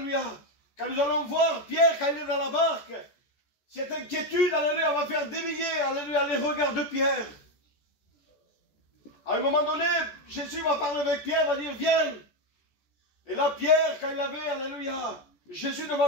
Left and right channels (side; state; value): right; late; 14 ms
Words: Quand nous allons voir Pierre, quand il est dans la barque, cette inquiétude, alléluia, va faire dévier, alléluia, les regards de Pierre. À un moment donné, Jésus va parler avec Pierre, va dire, viens. Et là, Pierre, quand il avait, alléluia, Jésus